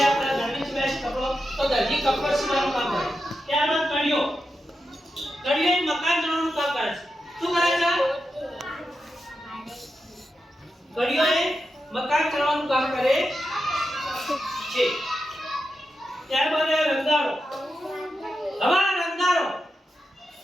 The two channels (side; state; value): both; normal; correlation 0.88